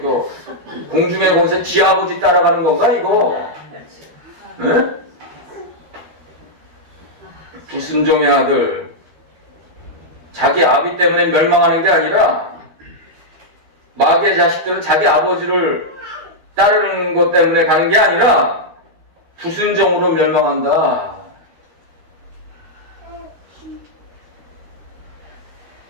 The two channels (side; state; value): left; late; 12 ms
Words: 공중의 권세 지 아버지 따라가는 건가 이거? 응? 불순종의 아들, 자기 아비 때문에 멸망하는 게 아니라 마귀의 자식들은 자기 아버지를 따르는 것 때문에 가는 게 아니라 불순종으로 멸망한다.